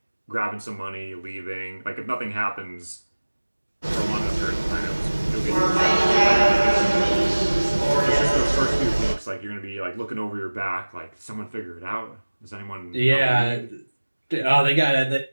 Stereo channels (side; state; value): both; inverted; correlation -1.00